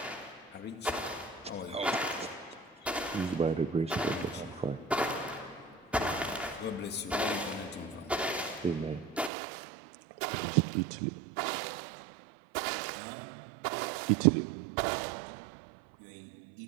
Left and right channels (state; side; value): drops out; left; at 9.3 s